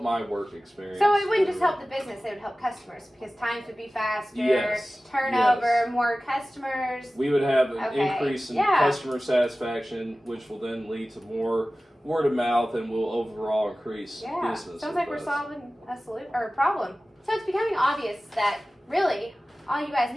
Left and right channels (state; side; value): normal; both; correlation 0.96